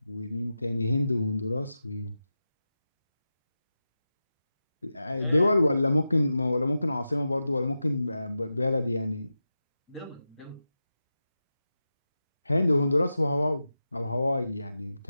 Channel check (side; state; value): both; inverted; correlation -0.92